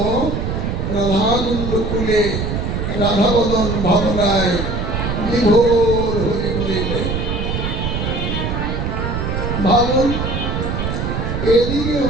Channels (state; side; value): noise; right; rumble, 2 dB below the sound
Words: রাধাকুণ্ড কুলে রাধা বদন ভাবনায় বিভোর হয়ে রইলেন। ভাবুন, এদিকে